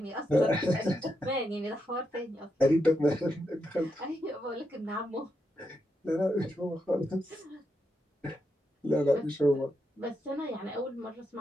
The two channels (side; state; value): both; normal; correlation 0.83